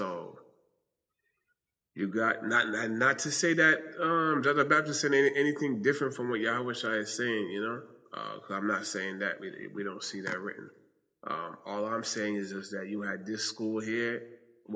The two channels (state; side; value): identical; both; correlation 1.00